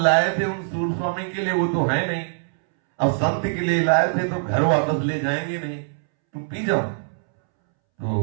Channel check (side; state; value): left; silent; 64 dB below the other